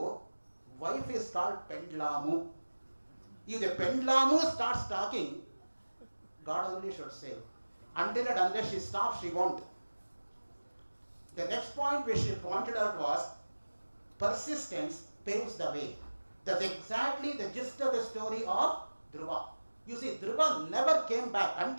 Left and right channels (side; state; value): both; inverted; correlation -1.00